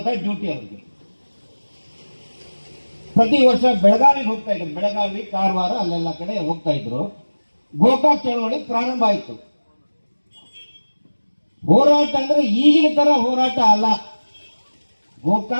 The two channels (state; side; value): inverted; both; correlation -1.00